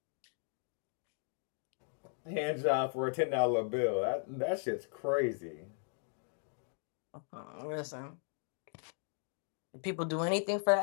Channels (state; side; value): silent; right; 53 dB below the other